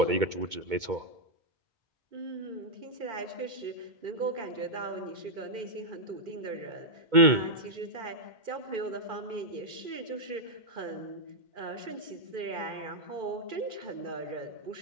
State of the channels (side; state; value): left; late; 2.2 ms